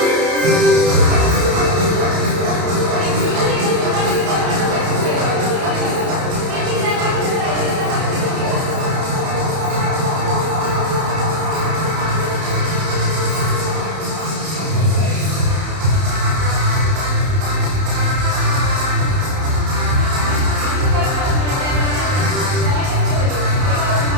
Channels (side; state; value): left; late; 31 ms